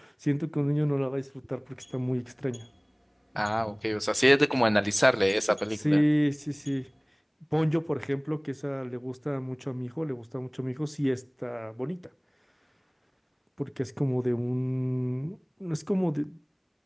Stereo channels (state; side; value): identical; both; correlation 1.00